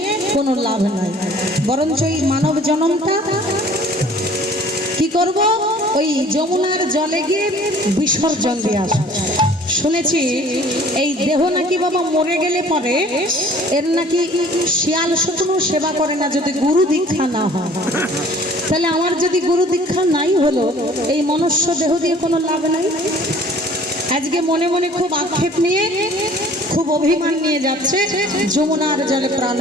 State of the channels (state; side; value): normal; both; correlation 0.52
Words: কোনো লাভ নাই, বরঞ্চ এই মানব জন্মটা কি করব ওই যমুনার জলে গিয়ে বিসর্জন দিয়ে আসব। শুনেছি এই দেহ নাকি বাবা মরে গেলে পরে এর নাকি শিয়াল শকুনও সেবা করে না যদি গুরু দীক্ষা না হয়। তাহলে আমার যদি গুরু দীক্ষা নাই হলো এই মনুষ্য দেহ দিয়ে কোনো লাভ নাই। আজকে মনে মনে খুব আক্ষেপ নিয়ে খুব অভিমান নিয়ে যাচ্ছে যমুনার জলে প্রাণ